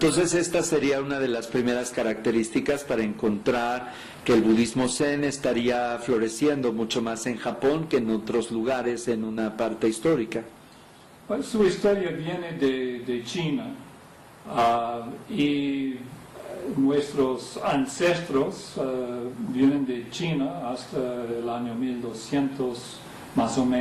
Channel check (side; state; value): both; identical; correlation 1.00